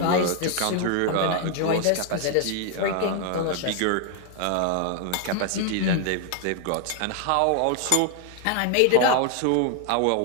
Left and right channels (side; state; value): both; different; correlation 0.01